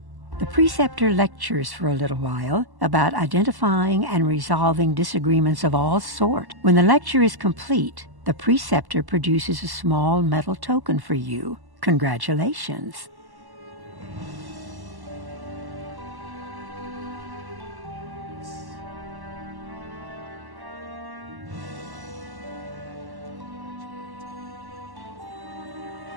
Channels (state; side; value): late; left; 1.1 ms